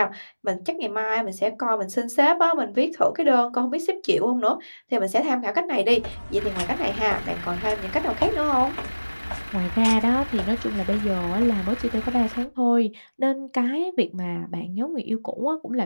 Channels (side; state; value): both; inverted; correlation -1.00